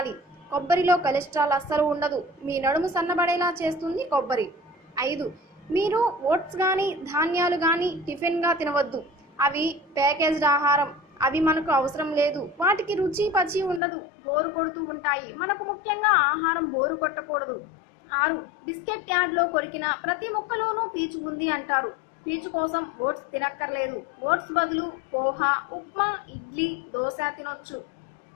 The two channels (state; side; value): drops out; right; at 13.8 s